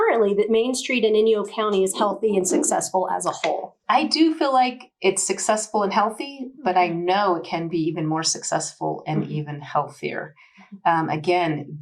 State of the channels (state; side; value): identical; both; correlation 1.00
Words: that Main Street in Inyo County is healthy and successful as a whole? I do feel like it's successful and healthy, but I know it can be even more successful and even healthier. Again,